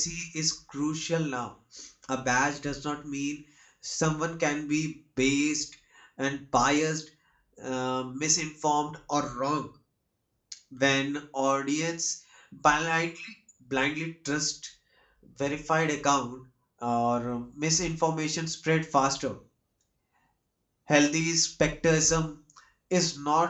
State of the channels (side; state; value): both; identical; correlation 1.00